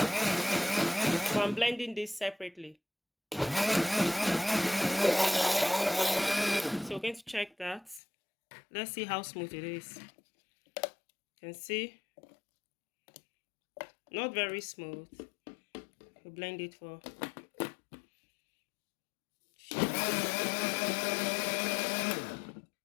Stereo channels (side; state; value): right; drops out; at 8.0 s